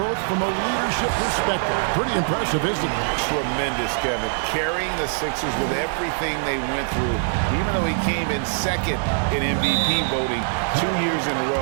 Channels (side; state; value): left; silent; digital silence